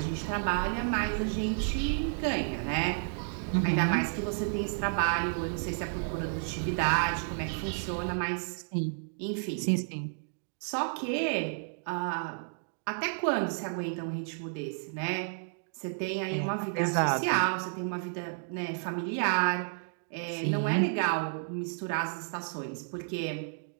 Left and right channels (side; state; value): left; silent; digital silence